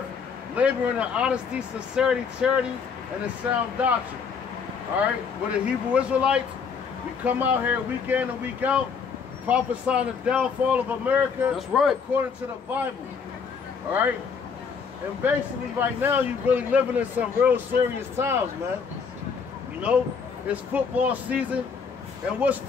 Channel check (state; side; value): quieter; right; 5.9 dB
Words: laboring in honesty, sincerity, charity, and in sound doctrine. All right, we're the Hebrew Israelites. We come out here week in and week out, prophesying the downfall of America. That's right. According to the Bible. All right, and basically right now you're really living in some real serious times, man. You know, it's football season, and what's